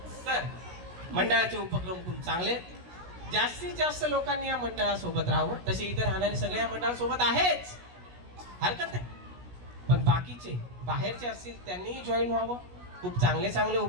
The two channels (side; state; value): left; late; 16 ms